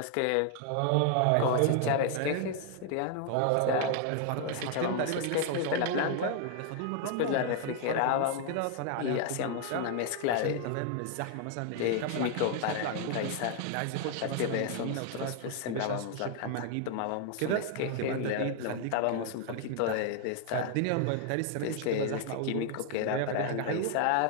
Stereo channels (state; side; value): different; both; correlation 0.00